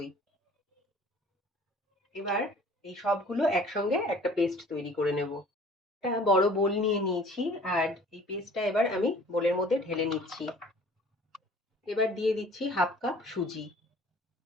এবার এই সবগুলো একসঙ্গে একটা পেস্ট তৈরি করে নেব। একটা বড় বোল নিয়ে নিয়েছি, আর এই পেস্টটা এবার আমি বোলের মধ্যে ঢেলে নিচ্ছি। এবার দিয়ে দিচ্ছি 1/2 কাপ সুজি।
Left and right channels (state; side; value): normal; both; correlation 0.50